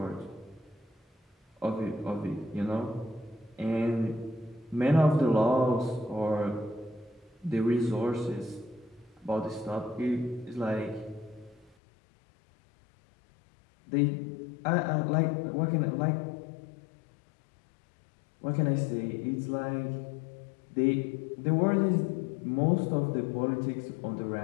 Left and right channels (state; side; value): drops out; right; at 11.8 s